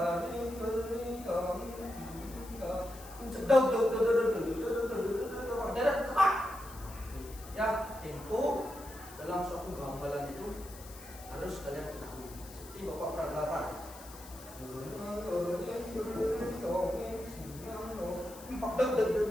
Ya, tempo dalam suatu gamelan itu harus kalian ketahui. Seperti Bapak peragakan.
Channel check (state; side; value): noise; left; hiss, 17 dB below the sound